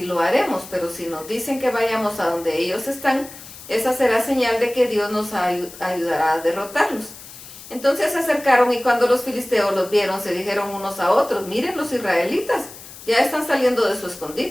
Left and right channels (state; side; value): noise; left; hiss, 16 dB below the sound